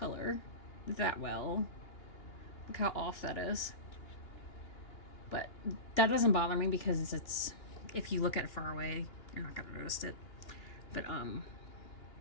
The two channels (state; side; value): late; right; 2.8 ms